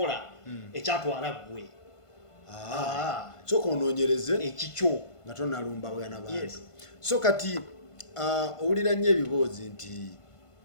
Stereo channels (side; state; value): right; late; 1.5 ms